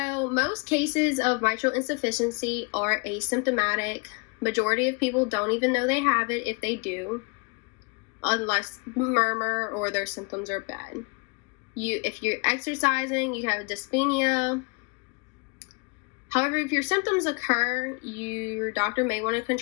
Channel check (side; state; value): right; quieter; 31.6 dB